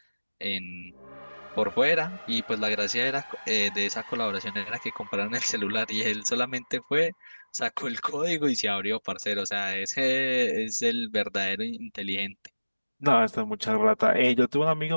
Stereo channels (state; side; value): inverted; both; correlation -1.00